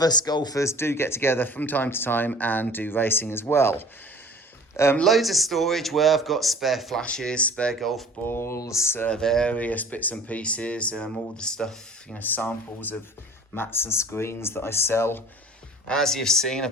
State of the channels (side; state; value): both; normal; correlation 0.46